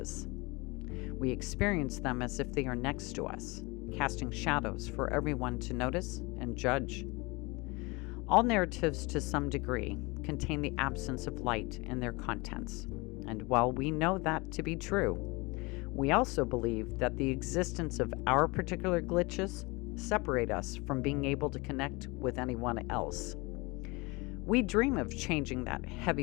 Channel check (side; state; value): right; quieter; 25.5 dB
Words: We experience them as if they are next to us, casting shadows for everyone to notice and judge. All narratives, to some degree, contain the absence of light in their contents, and while we know that to be true, we also believe that the existence of our particular glitches separate us from being able to connect with anyone else. We dream of changing that heavy